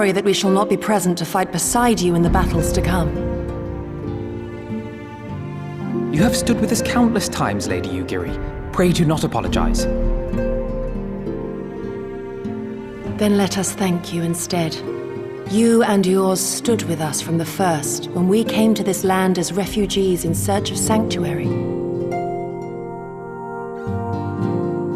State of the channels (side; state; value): both; identical; correlation 1.00